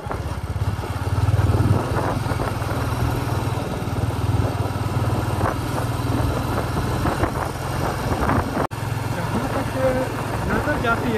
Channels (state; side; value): identical; both; correlation 1.00